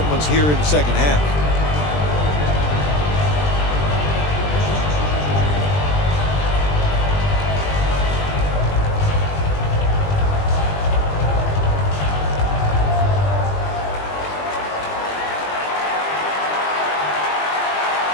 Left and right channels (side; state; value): right; late; 20 ms